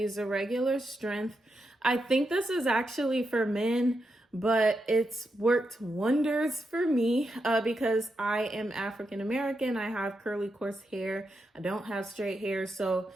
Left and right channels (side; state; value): both; normal; correlation 0.85